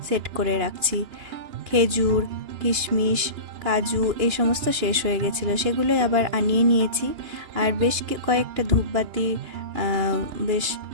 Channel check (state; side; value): late; left; 2.9 ms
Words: সেট করে রাখছি। খেজুর, কিশমিশ, কাজু, এই সমস্ত শেষ হয়ে গেছিলো, সেগুলোই আবার আনিয়ে নিয়েছি। আর বেশ কয়েকটা ধূপবাতি বেশ